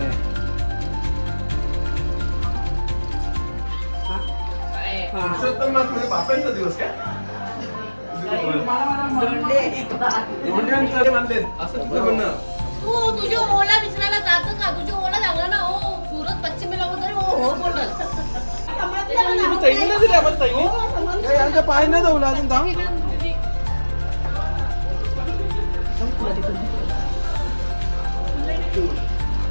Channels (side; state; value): both; inverted; correlation -1.00